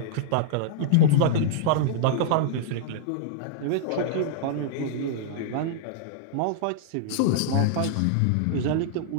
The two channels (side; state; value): both; different; correlation -0.02